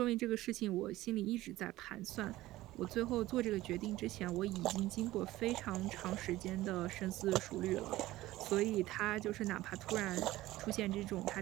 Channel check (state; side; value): quieter; left; 16.8 dB